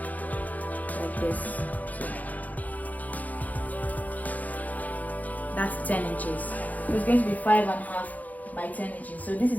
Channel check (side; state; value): right; late; 0.078 ms